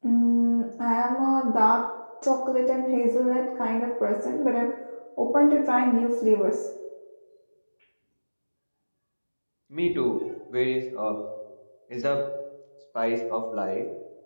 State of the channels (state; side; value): inverted; both; correlation -1.00